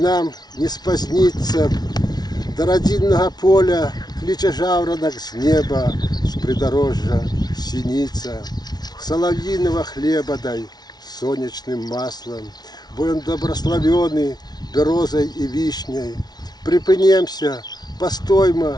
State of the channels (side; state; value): right; late; 0.19 ms